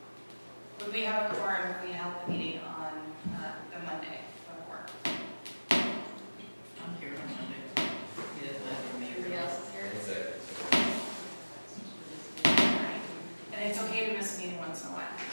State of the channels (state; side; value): inverted; both; correlation -1.00